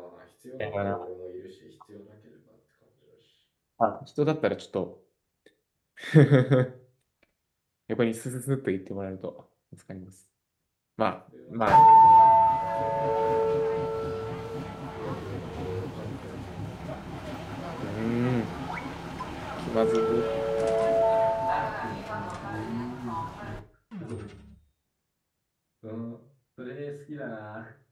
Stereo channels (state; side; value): identical; both; correlation 1.00